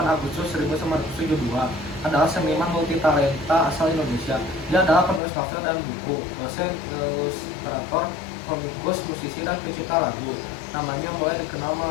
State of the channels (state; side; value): drops out; right; at 5.2 s